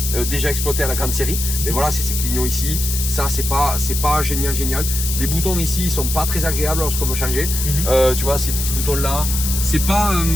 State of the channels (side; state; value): left; noise; hiss, 3 dB below the sound